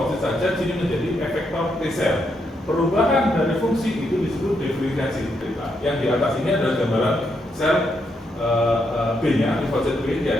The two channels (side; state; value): both; normal; correlation 0.79